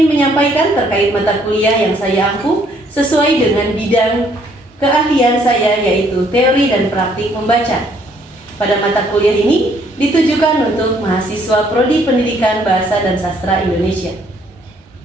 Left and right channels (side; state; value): both; normal; correlation 0.66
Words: menyampaikan terkait mata kuliah yang saya ampuh sesuai dengan bidang keahlian saya, yaitu teori dan praktik membaca. Pada mata kuliah ini ditujukan untuk mahasiswa Prodi Pendidikan Bahasa dan Sastra Indonesia.